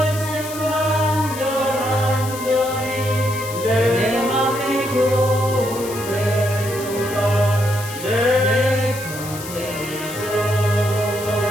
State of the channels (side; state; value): left; noise; hiss, 12 dB below the sound